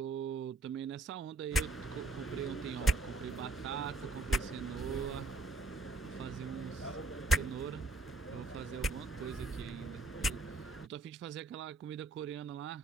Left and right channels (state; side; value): quieter; left; 3.7 dB